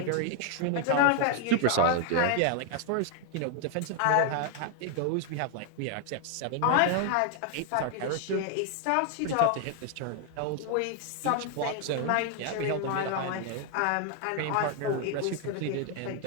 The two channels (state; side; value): different; both; correlation 0.00